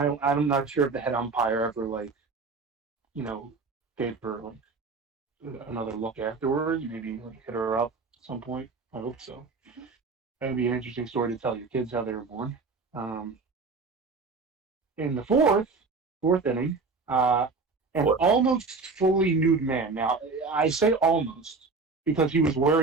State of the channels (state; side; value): quieter; left; 4.2 dB